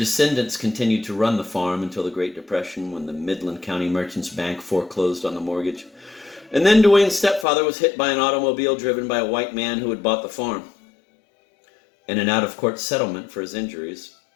continued to run the farm until the Great Depression, when the Midland County Merchants Bank foreclosed on the mortgage. And then Dwayne's stepfather was hit by an automobile driven by a white man who had bought the farm. In an out-of-court settlement for his injuries,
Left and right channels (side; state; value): right; drops out; at 7.5 s